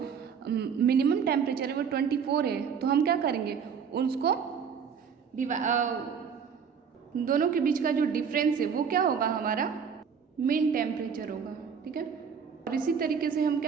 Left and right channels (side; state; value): left; quieter; 6.8 dB